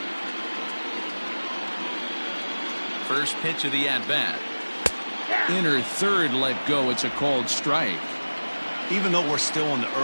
First pitch of the at-bat. Inner third let go. It's a called strike. Even though we're still in the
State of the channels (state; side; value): inverted; both; correlation -1.00